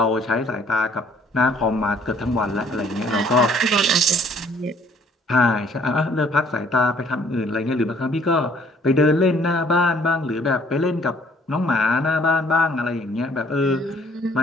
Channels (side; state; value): both; normal; correlation 0.60